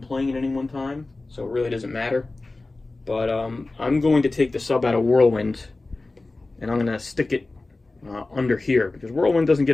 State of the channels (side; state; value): right; quieter; 3.2 dB